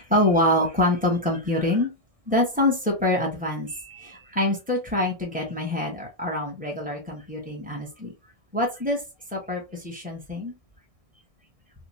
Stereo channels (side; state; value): left; late; 1.6 ms